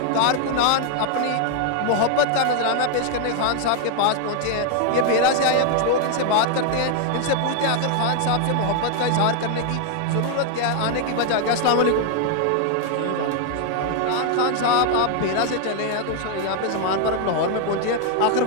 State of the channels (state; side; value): different; both; correlation 0.00